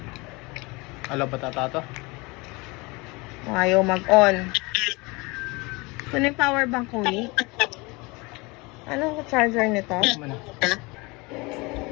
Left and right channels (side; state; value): right; quieter; 25.6 dB